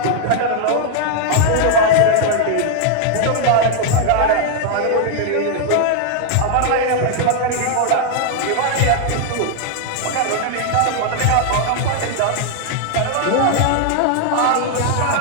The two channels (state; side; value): different; both; correlation 0.00